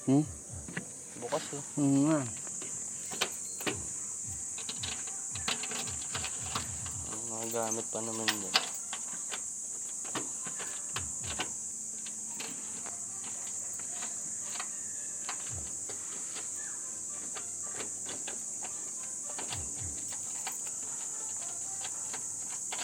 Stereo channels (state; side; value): identical; both; correlation 1.00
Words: Hmm? Bukas oh. Nga. Mga gamit pa naman dyan.